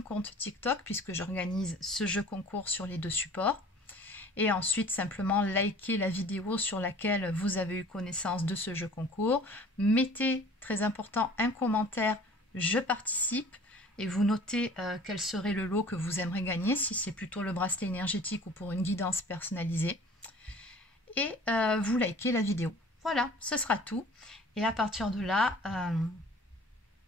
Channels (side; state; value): both; normal; correlation 0.47